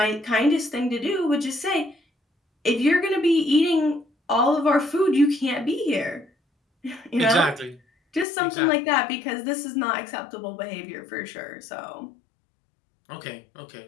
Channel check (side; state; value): right; drops out; at 8.2 s